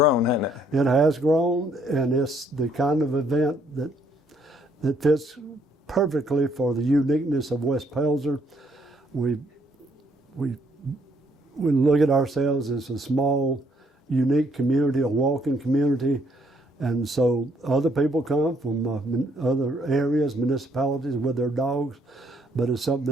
hasn't it? It has grown, and it's the kind of event that fits perfectly for the uniqueness of West Pelzer. We look at ourselves as a small, unique community, a walking community, and so other people come from other areas, municipalities with their dogs, but it's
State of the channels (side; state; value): both; normal; correlation 0.68